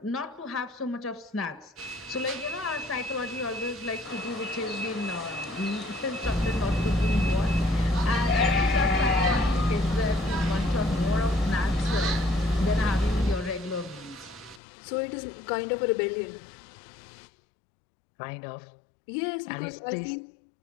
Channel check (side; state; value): right; drops out; at 14.6 s